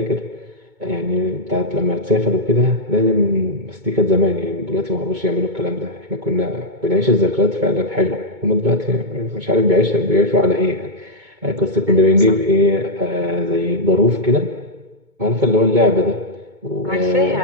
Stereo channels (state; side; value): late; left; 2.2 ms